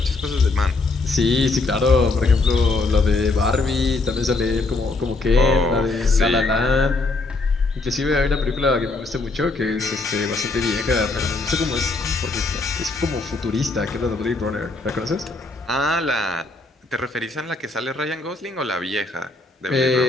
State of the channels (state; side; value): quieter; right; 3.4 dB